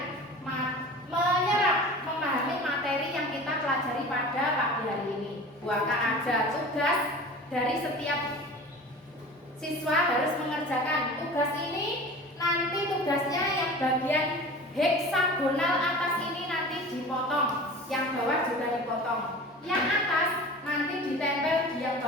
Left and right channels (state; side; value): normal; both; correlation 0.38